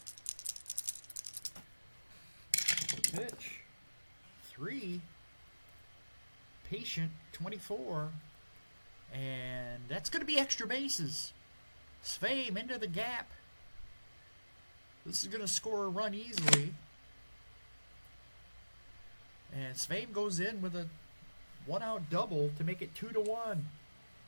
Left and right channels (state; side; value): inverted; both; correlation -1.00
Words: Pitch. 3. Patient, 24. And that's going to be extra bases. Sveum into the gap. This is going to score a run easily. And Sveum goes in with a 1-out double to make it 2-1.